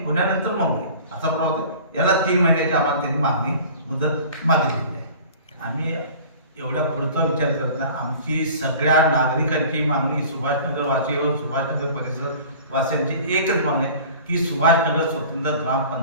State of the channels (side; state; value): both; inverted; correlation -0.43